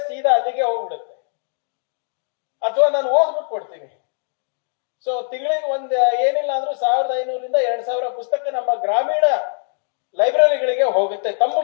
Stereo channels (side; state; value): right; silent; digital silence